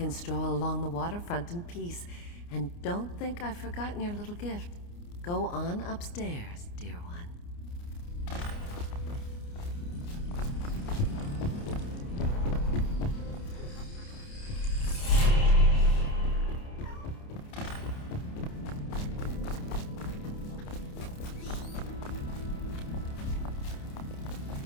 stroll along the waterfront in peace. And don't think I've forgotten your little gift. Go on upstairs, dear one.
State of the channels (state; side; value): late; right; 29 ms